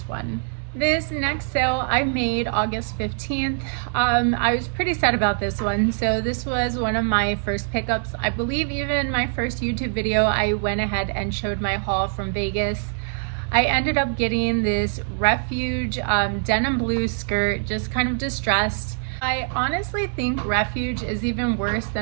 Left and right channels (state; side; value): silent; left; digital silence